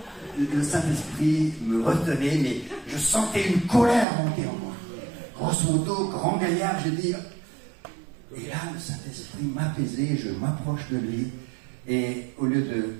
Le Saint-Esprit me retenait, mais je sentais une colère monter en moi. Grosse moto, grand gaillard, j'ai dit... Et là, le Saint-Esprit m'apaisait, je m'approche de lui, et au lieu de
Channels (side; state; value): left; drops out; at 4.0 s